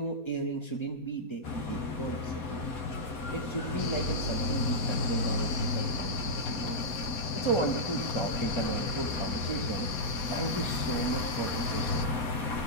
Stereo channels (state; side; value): late; right; 4.2 ms